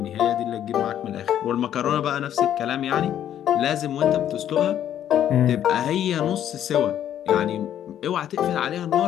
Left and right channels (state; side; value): quieter; right; 10.6 dB